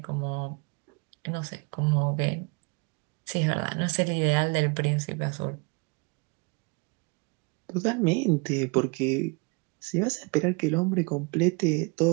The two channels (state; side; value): quieter; left; 31.4 dB